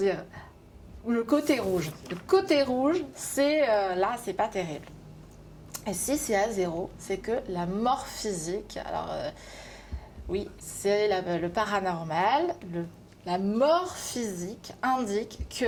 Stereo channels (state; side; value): identical; both; correlation 1.00